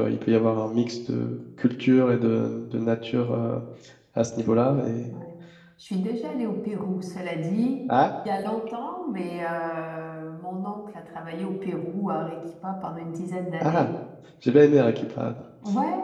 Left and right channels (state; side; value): identical; both; correlation 1.00